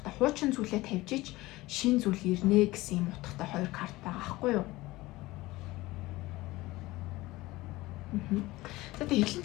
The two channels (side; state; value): right; quieter; 19.4 dB